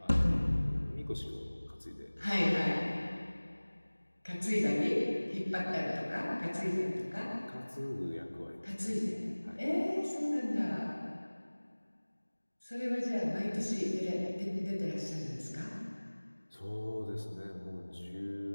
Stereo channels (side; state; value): both; inverted; correlation -1.00